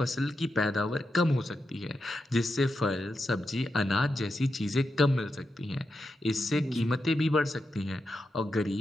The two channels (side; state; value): both; normal; correlation 0.87